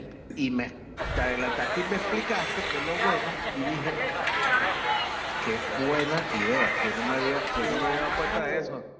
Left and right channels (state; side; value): identical; both; correlation 1.00